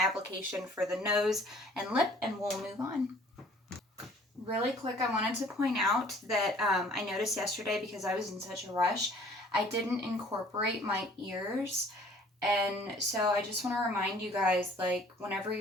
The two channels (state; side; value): normal; both; correlation 0.54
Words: for the nose and lip, and we'll move on. Really quick, I wanted to point out that I noticed yesterday, because I was in such a rush, I didn't incorporate my ears. And so I just want to remind you guys, like, whenever